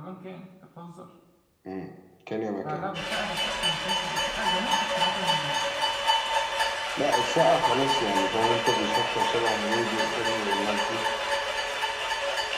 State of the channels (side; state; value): both; identical; correlation 1.00